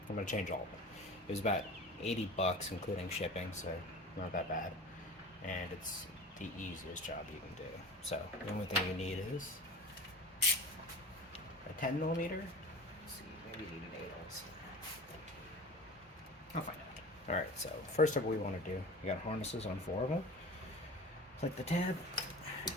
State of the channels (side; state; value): both; normal; correlation 0.36